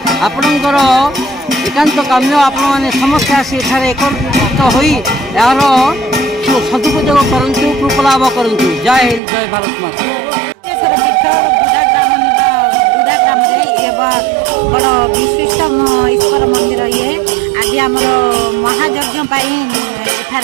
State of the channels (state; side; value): drops out; left; at 9.2 s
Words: आपणकर एकांत काम्य आपण मैंने समस्ते आसी एकत्रित हो यार सदुपयोग करूँ कृपा लाभ करूँ। जय हिंद जय भारत माता। बड़ विशिष्ट ईश्वर मंदिर ये आज आमर महायज्ञ